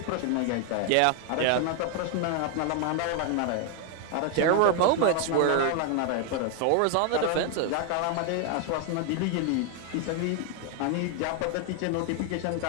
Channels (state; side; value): different; both; correlation 0.01